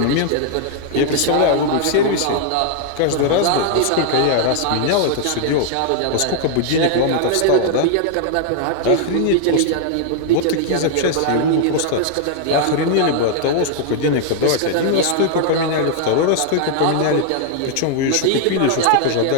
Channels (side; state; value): both; different; correlation 0.00